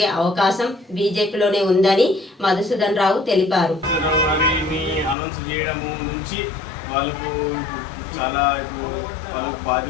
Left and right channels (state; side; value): drops out; right; at 5.2 s